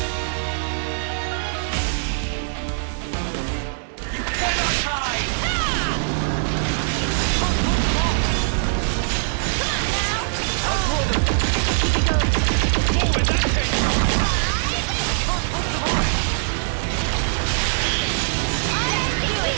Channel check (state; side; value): silent; left; digital silence